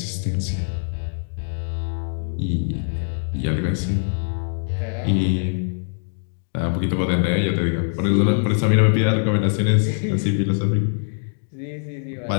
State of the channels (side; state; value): right; silent; digital silence